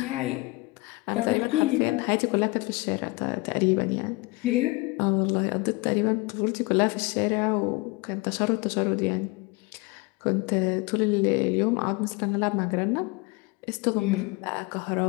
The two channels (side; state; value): right; quieter; 24.4 dB